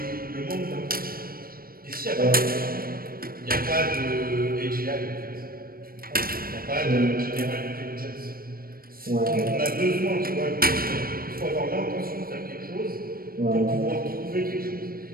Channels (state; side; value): late; left; 0.43 ms